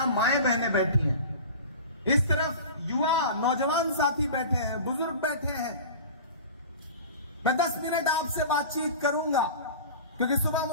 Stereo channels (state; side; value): inverted; both; correlation -0.36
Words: माएं बहनें बैठी हैं, इस तरफ युवा नौजवान साथी बैठे हैं, बुजुर्ग बैठे हैं। मैं 10 मिनट आपसे बातचीत करूंगा क्योंकि सुबह